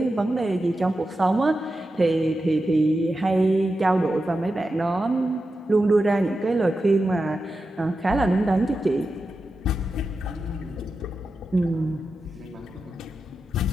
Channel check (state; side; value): normal; both; correlation 0.90